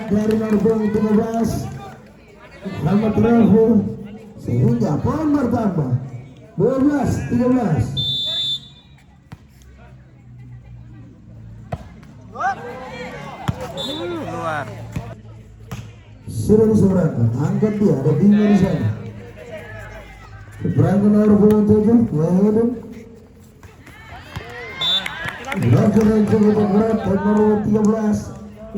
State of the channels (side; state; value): both; identical; correlation 1.00